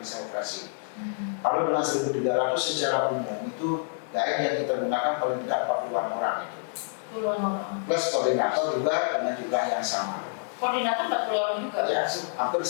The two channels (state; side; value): silent; right; digital silence